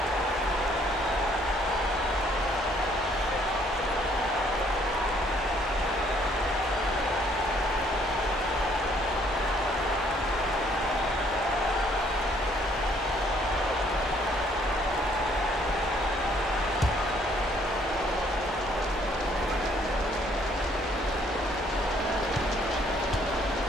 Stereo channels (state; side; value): normal; both; correlation 0.64